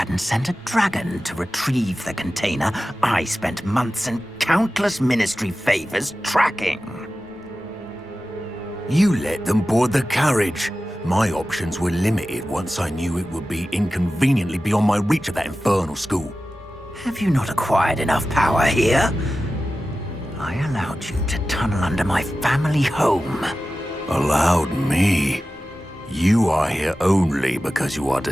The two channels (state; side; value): normal; both; correlation 0.94